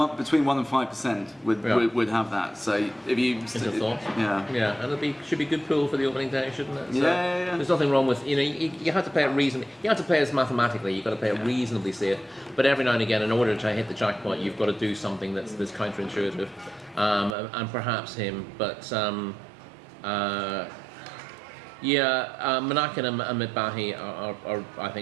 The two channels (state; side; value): drops out; left; at 17.4 s